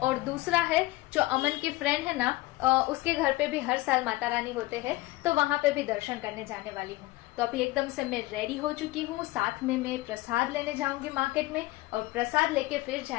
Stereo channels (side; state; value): right; quieter; 19.2 dB